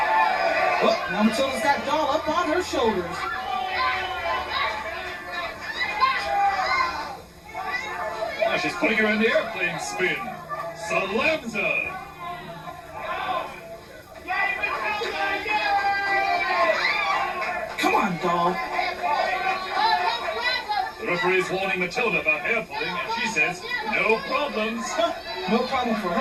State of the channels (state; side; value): identical; both; correlation 1.00